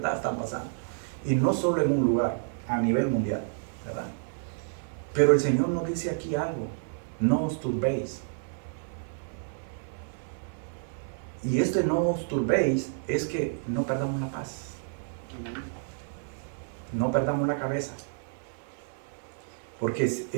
están pasando. Y no solo en un lugar, a nivel mundial, ¿verdad? Pero el Señor nos dice aquí algo: no os turbéis. Y este no os turbéis es que no perdamos la paz. No perdamos la cabeza. Porque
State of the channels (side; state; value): left; silent; 58 dB below the other